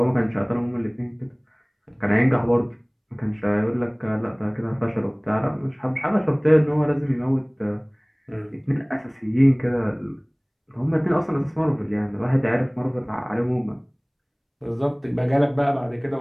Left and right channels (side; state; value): both; identical; correlation 1.00